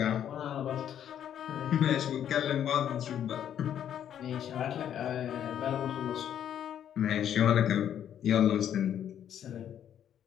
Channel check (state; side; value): quieter; right; 9.8 dB